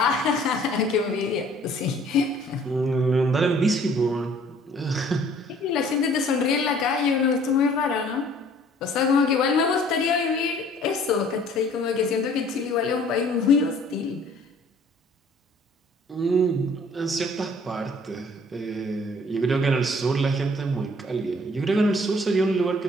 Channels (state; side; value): normal; both; correlation 0.56